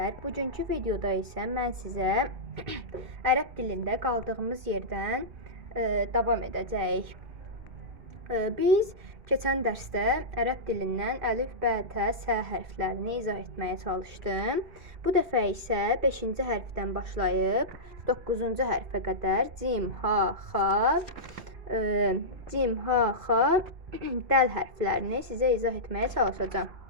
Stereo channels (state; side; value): late; left; 2.5 ms